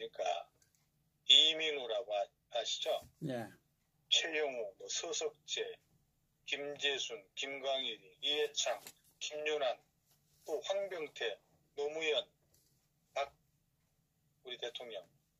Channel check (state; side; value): identical; both; correlation 1.00